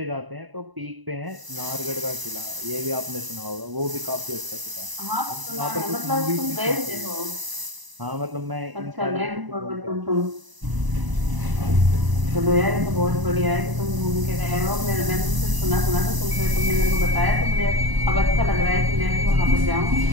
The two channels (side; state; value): left; late; 1.0 ms